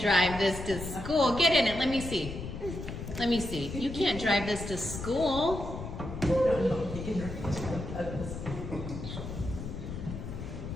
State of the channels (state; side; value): noise; left; rumble, 8 dB below the sound